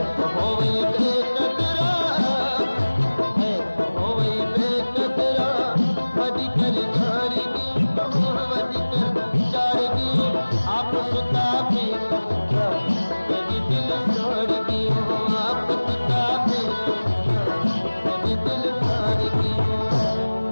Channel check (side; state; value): both; inverted; correlation -1.00